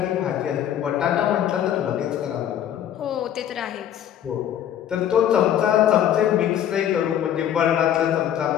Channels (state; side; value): quieter; right; 10.4 dB